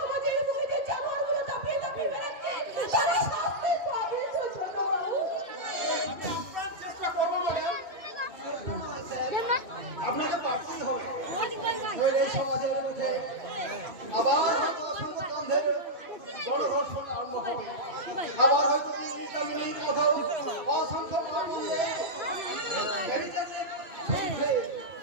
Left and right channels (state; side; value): late; left; 2.6 ms